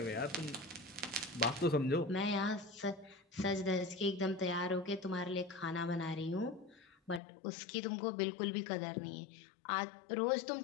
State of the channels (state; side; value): drops out; right; at 7.2 s